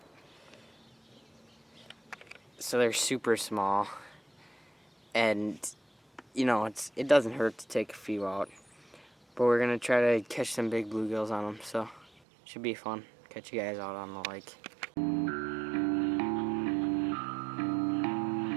So they're super small, and you know, it doesn't hurt to take a few out. But we're gonna try to catch some big bluegills on them, so should be fun. Catch you guys out on the lake.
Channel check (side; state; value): left; drops out; at 12.1 s